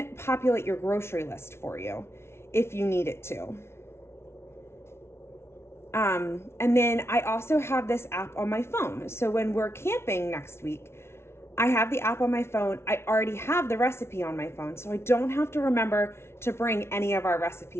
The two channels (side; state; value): right; late; 0.12 ms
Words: populate your grocery list for you if you need it to. And then I also have this app on my phone. So when we're camping next week, I have the app on my phone. I already have the recipe on my phone, so I don't have to remember to bring any of our